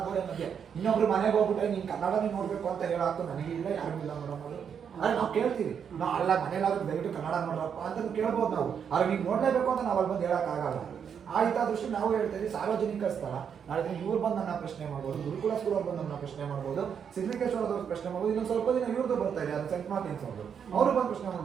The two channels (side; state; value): left; quieter; 7.5 dB